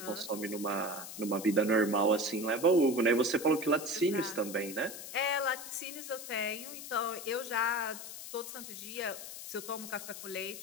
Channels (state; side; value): noise; left; hiss, 10 dB below the sound